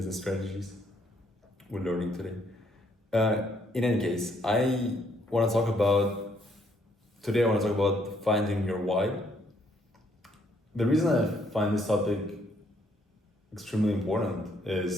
strategies we're learning today. In any case, want to talk about today. I want to talk about finding your why. The reason I find this topic extremely important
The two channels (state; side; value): normal; both; correlation 0.69